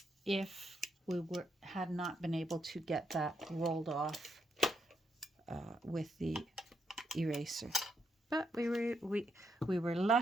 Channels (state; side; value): normal; both; correlation 0.79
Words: if we had not been able to get that rolled off with the eraser. But we were